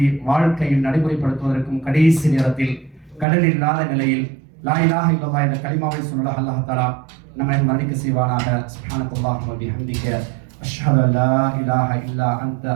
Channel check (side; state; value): left; drops out; at 3.2 s